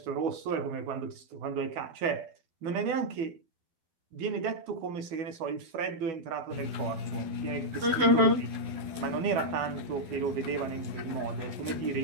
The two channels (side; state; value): left; late; 12 ms